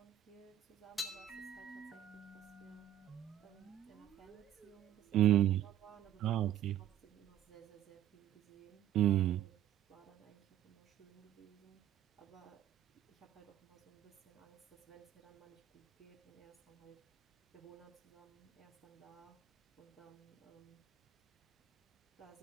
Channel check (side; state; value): left; quieter; 11.4 dB